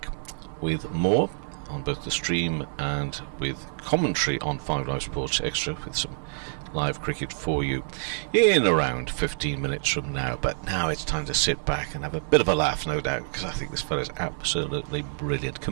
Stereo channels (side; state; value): left; silent; digital silence